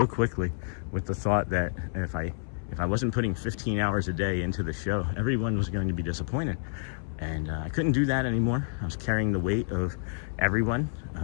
quickly with the thought that if I wasn't putting 15 hours a day into the show, everyone was going to be disappointed. And I couldn't do that anymore. I was carrying the weight of everyone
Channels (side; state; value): right; silent; 59 dB below the other